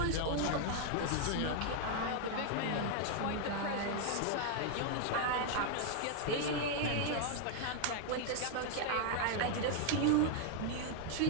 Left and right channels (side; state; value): both; different; correlation 0.00